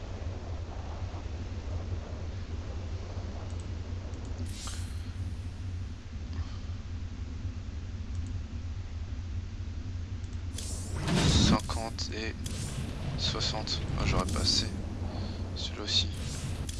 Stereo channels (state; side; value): identical; both; correlation 1.00